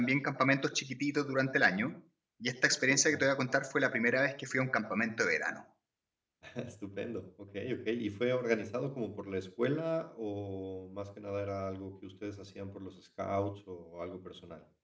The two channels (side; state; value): both; identical; correlation 1.00